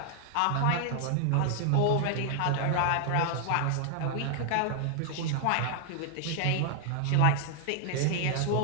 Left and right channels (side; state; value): both; different; correlation 0.00